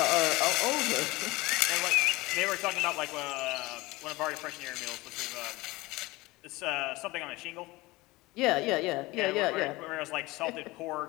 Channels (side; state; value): right; quieter; 21.3 dB